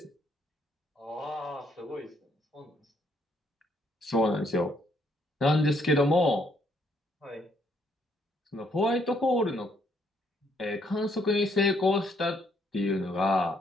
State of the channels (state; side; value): normal; both; correlation 0.70